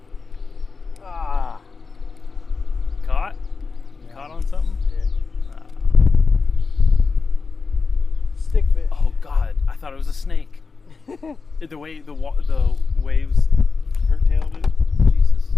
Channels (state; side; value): quieter; right; 4.6 dB